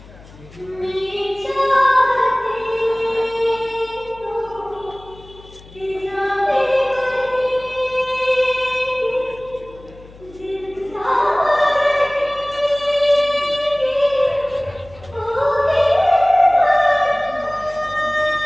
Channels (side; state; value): left; noise; hum, 22 dB below the sound